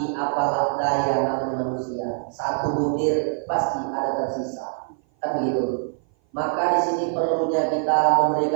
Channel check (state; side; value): silent; left; 57 dB below the other